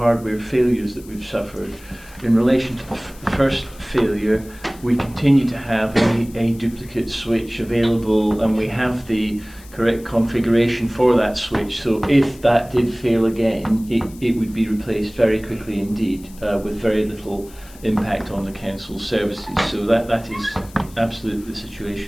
failures that we've suffered, in relation to the first failure, we continue to have a duplicate switch available, and we have the correct configuration for that switch. So if that did fail again, it would be replaced very quickly indeed, with very little impact on the council's services. So that is absolutely the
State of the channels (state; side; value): noise; left; hiss, 22 dB below the sound